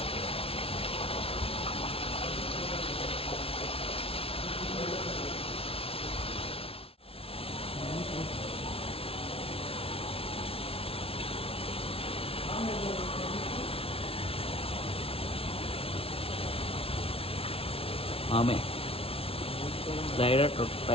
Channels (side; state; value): right; late; 0.27 ms